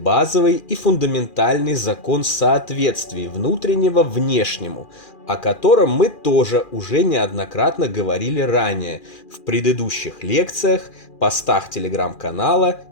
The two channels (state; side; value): late; right; 2.4 ms